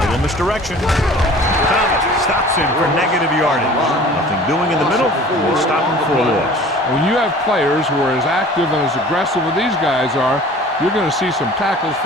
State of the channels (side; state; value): both; normal; correlation 0.45